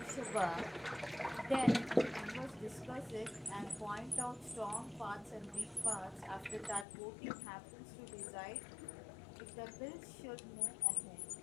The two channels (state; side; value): drops out; right; at 6.9 s